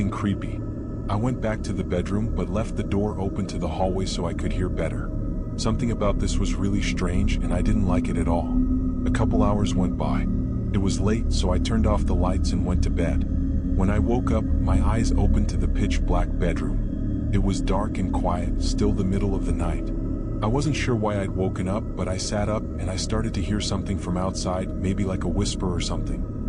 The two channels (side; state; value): both; identical; correlation 1.00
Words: creepy. I went back to the bedroom but left the door open to the hallway so I could hear better. Something about this was really strange and I didn't like it at all. A couple hours went by. It was late, so I turned off the lights and went to bed. When I woke up, my eyes opened to the pitch-black bedroom. It was dark and quiet, still the middle of the night. I wasn't sure why I'd woken up, but I sat up and I started to hear something from outside, maybe like a whisper or something.